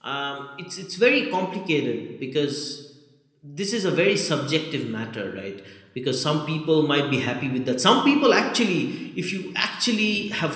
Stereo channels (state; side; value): identical; both; correlation 1.00